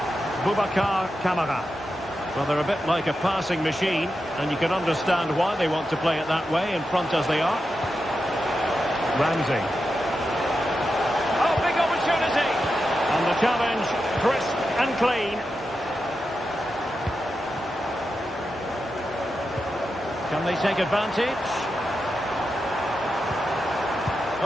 Boubacar Kamara. Well, they're a bit like a passing machine, and you can understand why they want to play it that way, in front as they are. Ramsey. Oh, big opportunity. And the challenge, crisp and clean. Can they take advantage?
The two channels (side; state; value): both; normal; correlation 0.89